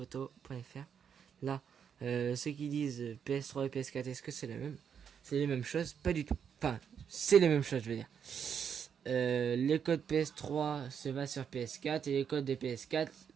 Là, ceux qui disent PS3 et PS4, est-ce que c'est la même? C'est les mêmes choses? Pas du tout. Enfin, c'est les mêmes choses, je veux dire. Les codes PS3 se va sur PS4 et les codes des PS4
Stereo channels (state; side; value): quieter; left; 7.6 dB